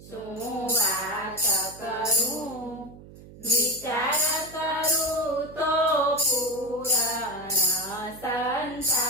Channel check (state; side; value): noise; right; hum, 18 dB below the sound